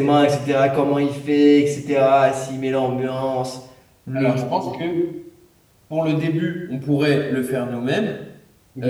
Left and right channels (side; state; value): both; identical; correlation 1.00